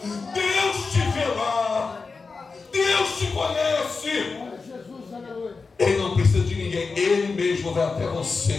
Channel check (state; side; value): quieter; right; 4.4 dB